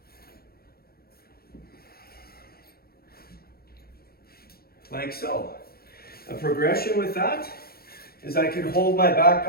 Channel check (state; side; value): late; right; 0.44 ms